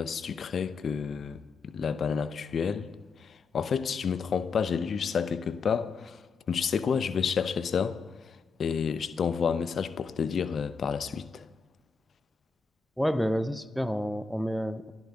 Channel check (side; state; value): right; quieter; 4.8 dB